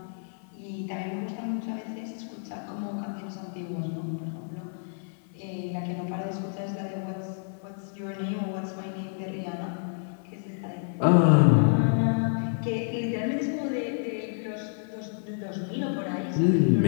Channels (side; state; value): right; silent; 59 dB below the other